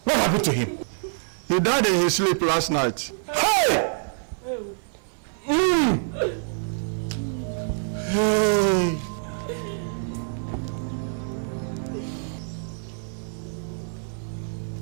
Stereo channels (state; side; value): silent; left; 61 dB below the other